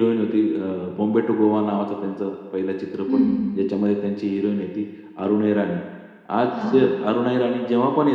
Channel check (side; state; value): both; identical; correlation 1.00